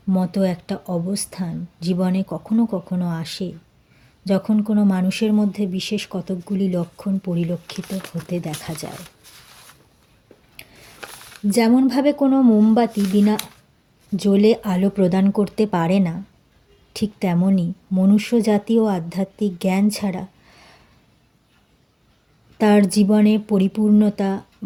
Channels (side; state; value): both; identical; correlation 1.00